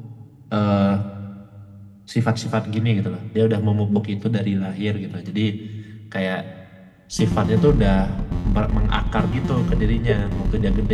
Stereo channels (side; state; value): both; identical; correlation 1.00